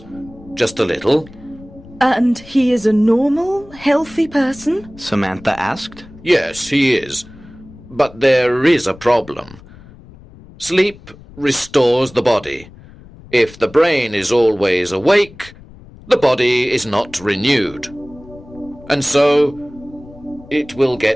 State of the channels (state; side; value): noise; left; rumble, 21 dB below the sound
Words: Just a little. And he is a normal, healthy person? Samantha asked. Yes, he is. But there is a problem. Sleep restores the body. If the brain is always awake, the body is not renewed. And so, it will